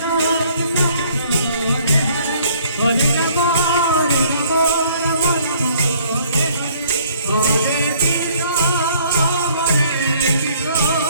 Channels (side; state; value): both; inverted; correlation -0.60